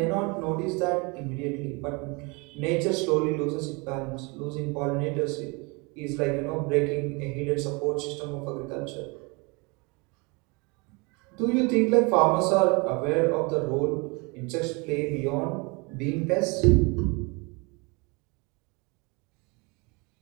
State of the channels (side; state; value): left; quieter; 29.0 dB